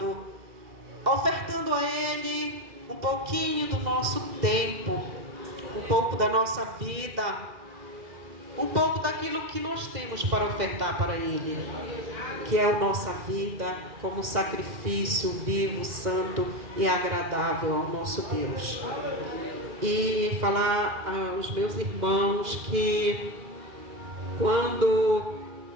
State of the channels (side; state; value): left; late; 2.4 ms